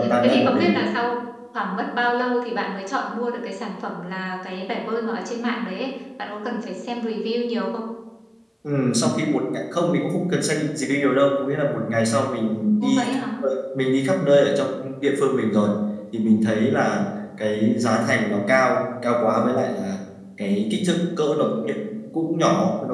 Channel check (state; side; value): identical; both; correlation 1.00